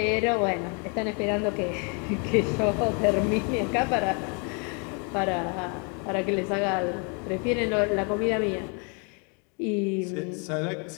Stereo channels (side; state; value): right; quieter; 36.2 dB